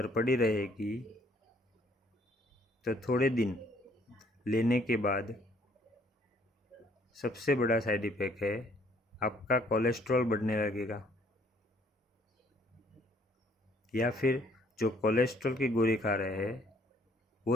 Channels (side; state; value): both; normal; correlation 0.63